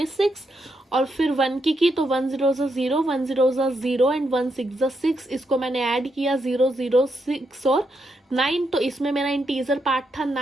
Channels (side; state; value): both; normal; correlation 0.81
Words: और फिर 1 की तो 1 0 0, 1 0 0 एंड 1 6 6, इसको मैंने ऐड किया 0 0 6 और 9। तो इसमें मेरा इंटीजर पार्ट था